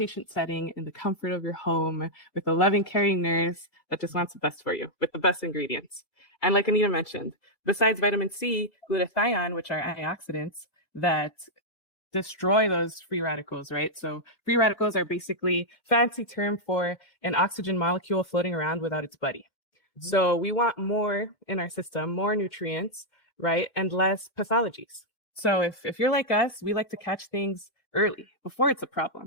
setting in the comfort of your home with a loving, caring nurse that just wants the best for you with the best ingredients? And like Anita mentioned, besides vitamin C, glutathione, which are antioxidants that destroy those free radicals, right? So free radicals are basically fancy term for an oxygen molecule floating around without its buddy. So we want more in our system, more nutrients, right? And less pathologies. So if you're like us, we like to catch things early before it's a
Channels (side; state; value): right; late; 2.1 ms